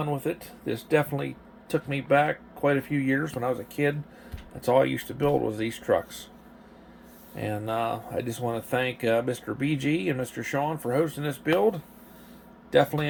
with it. This definitely took me back quite a few years when I was a kid. That's all I used to build was these trucks. And I just want to thank Mr. BG and Mr. Sean for hosting this build. Definitely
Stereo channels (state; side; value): identical; both; correlation 1.00